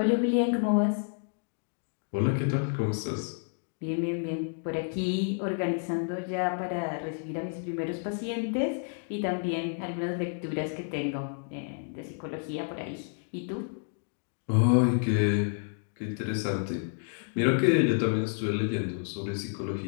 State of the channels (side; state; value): right; silent; 58 dB below the other